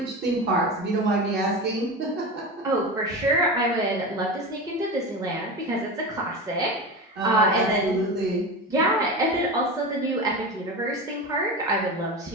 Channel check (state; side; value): normal; both; correlation 0.25